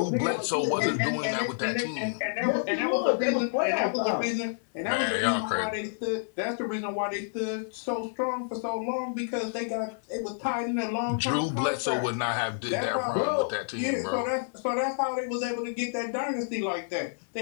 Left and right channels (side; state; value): right; silent; 59 dB below the other